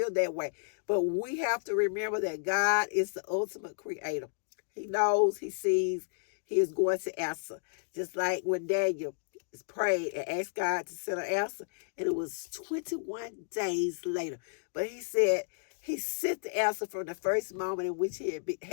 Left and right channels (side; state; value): right; silent; digital silence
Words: that way. But we have to remember that God is the ultimate creator. He knows, he sees, he is going to answer. Just like when Daniel prayed and asked God to send an answer, and it was 21 days later. But he said he sent the answer from the first moment in which he